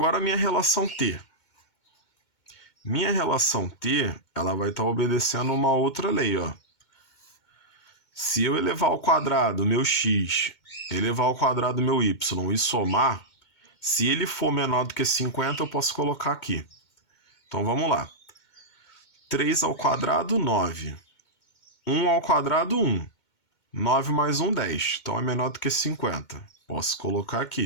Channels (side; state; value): right; late; 2.2 ms